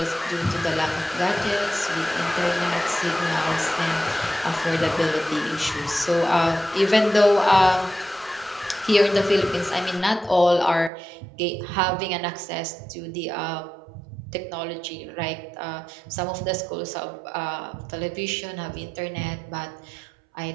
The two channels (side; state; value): left; drops out; at 10.9 s